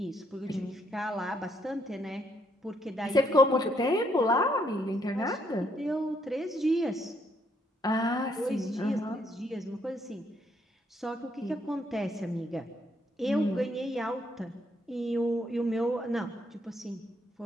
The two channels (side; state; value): both; normal; correlation 0.72